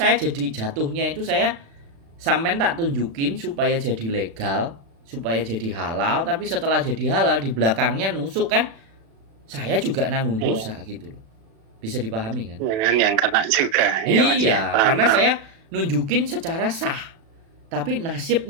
jadi jatuhnya itu saya sampean tak tunjukin supaya jadi legal, supaya jadi halal, tapi setelah jadi halal di belakangnya nusuk kan saya juga nanggung dosa gitu loh. Bisa dipahami kan? Jangan yang kena juga. Iya, karena saya nunjukin secara sah. Tapi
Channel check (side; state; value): left; late; 36 ms